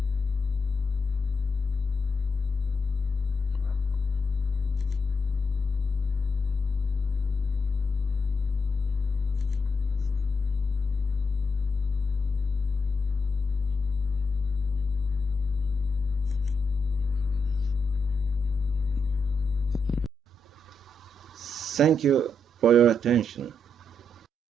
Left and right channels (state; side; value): normal; both; correlation 0.82